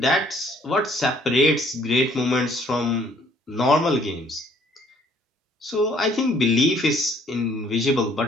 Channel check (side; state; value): both; normal; correlation 0.61